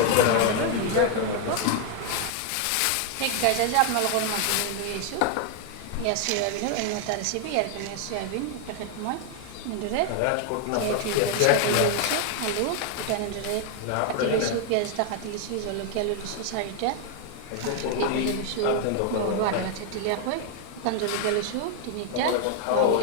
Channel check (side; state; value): both; different; correlation 0.00